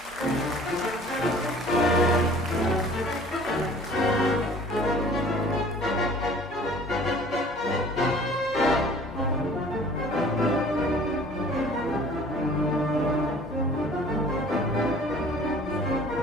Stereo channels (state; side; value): normal; both; correlation 0.49